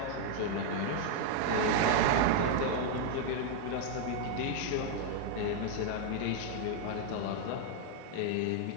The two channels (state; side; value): different; both; correlation 0.00